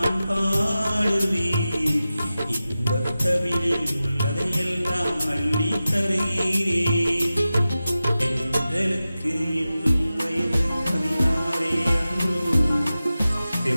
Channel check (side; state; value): both; inverted; correlation -0.94